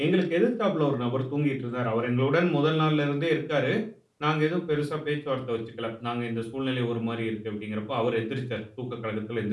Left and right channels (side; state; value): both; identical; correlation 1.00